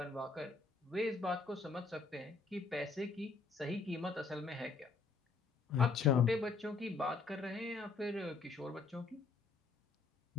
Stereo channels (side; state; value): right; quieter; 4.2 dB